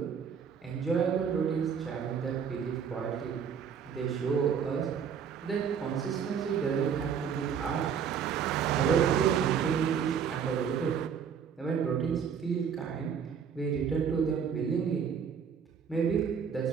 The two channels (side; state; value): left; quieter; 7.3 dB